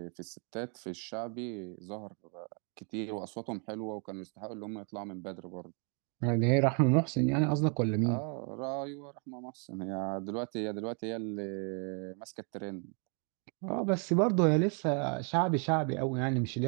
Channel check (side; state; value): left; quieter; 39.6 dB